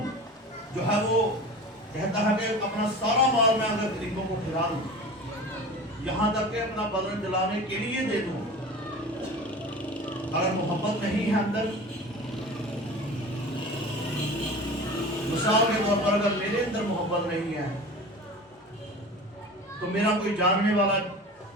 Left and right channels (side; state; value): both; normal; correlation 0.36